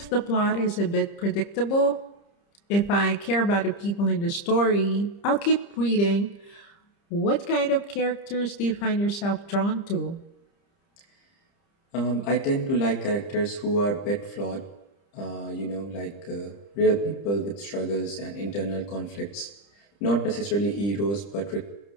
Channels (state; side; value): late; right; 30 ms